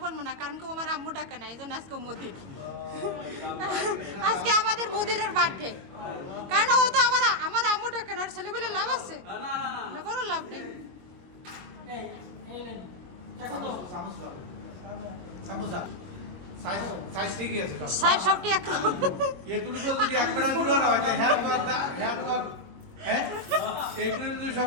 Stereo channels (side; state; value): left; late; 22 ms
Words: বলবো না, কারণ কি আমার আম্মু ডাকে না, এই জন্য আজকে মুদির। আজকে আমাদের মুদিরের বার্থডে, কারণ ও তো আমার আম্মু ডাকে না, ছেলে বলে লাভ আছে না, কোনো লাভ নেই। সাইজ সবটি একরকম।